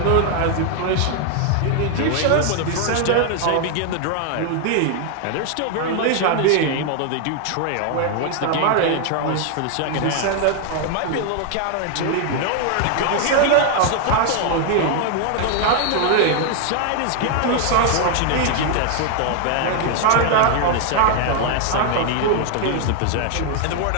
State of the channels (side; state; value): both; different; correlation 0.00